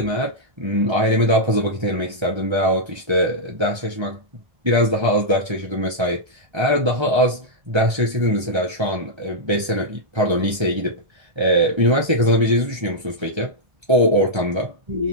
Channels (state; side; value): late; left; 1.3 ms